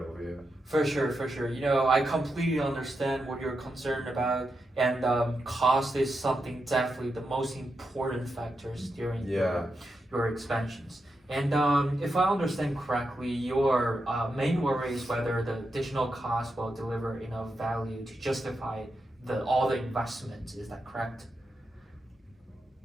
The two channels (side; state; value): both; normal; correlation 0.86